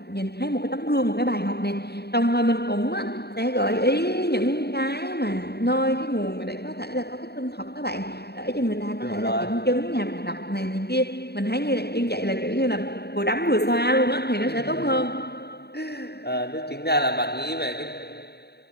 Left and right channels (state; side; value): late; right; 0.48 ms